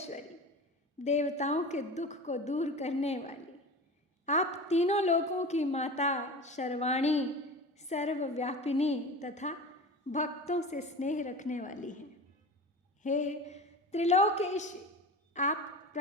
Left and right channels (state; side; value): normal; both; correlation 0.32